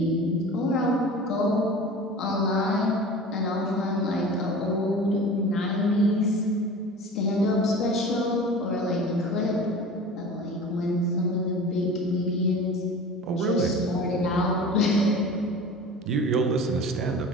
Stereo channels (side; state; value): both; normal; correlation 0.38